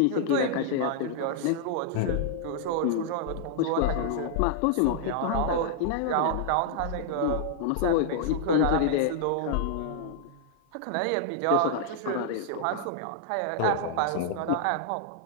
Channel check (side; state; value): both; different; correlation -0.01